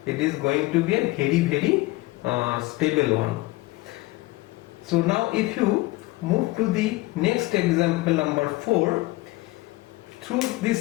it is going to be a very stable one. So now if you move to the next example, number 4, through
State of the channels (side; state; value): right; quieter; 20.6 dB